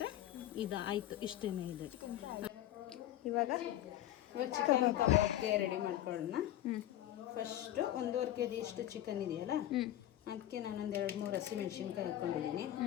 ಇದು ಆಯಿತು. ಇಷ್ಟೇ ಇದೆ. ಇವಾಗ ಚಿಕನ್ ಕಬಾಬ್ಗೆ ರೆಡಿ ಮಾಡ್ಕೊಳ್ಳೋಣ. ಫಸ್ಟು 1.5 kg ಇಷ್ಟು ಚಿಕನ್ ಇದೆಯಲ್ಲ, ಅದಕ್ಕೆ ನಾನೊಂದು 2-3 ಹಸಿಮೆಣ್ಸಿನ್ಕಾಯಿ ಹಾಕ್ಕೊಂಡಿದ್ದೀನಿ,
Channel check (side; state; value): right; quieter; 12.9 dB